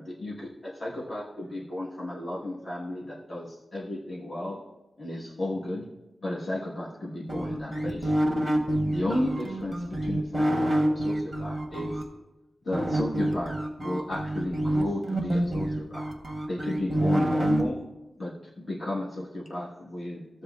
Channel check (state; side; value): normal; both; correlation 0.95